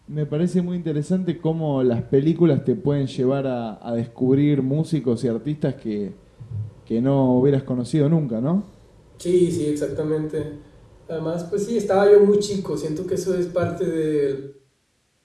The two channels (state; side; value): identical; both; correlation 1.00